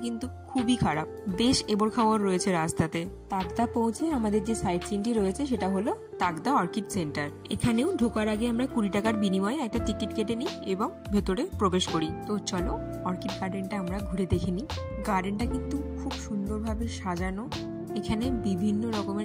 কিন্তু খুবই খারাপ। বেশ এবড় খাওয়ার রয়েছে রাস্তাতে। তাকদা পৌঁছে আমাদের যে সাইট সিনটি রয়েছে সেটা হলো তাকদা অর্কিড সেন্টার। এখানেও ঢোকার আগে আমরা 20 টাকার বিনিময়ে একটা টিকিট কেটে নিই এবং ভেতরে প্রবেশ করি। তো চলো অর্কিড গার্ডেনটা আমরা ঘুরে দেখে নিই। গার্ডেনটা কিন্তু খুব সুন্দরভাবে সাজানো। এখানে বিভিন্ন রকমের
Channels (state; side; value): identical; both; correlation 1.00